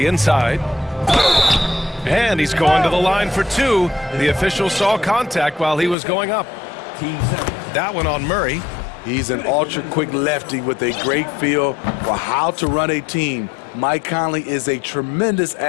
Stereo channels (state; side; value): drops out; right; at 6.0 s